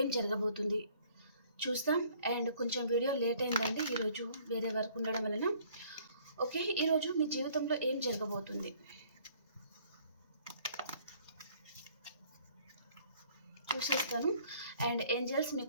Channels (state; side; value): inverted; both; correlation -0.58